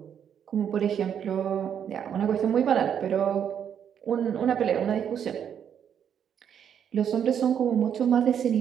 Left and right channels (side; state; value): left; quieter; 8.6 dB